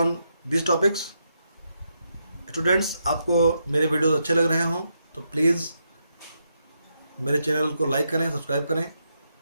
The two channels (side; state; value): both; inverted; correlation -0.81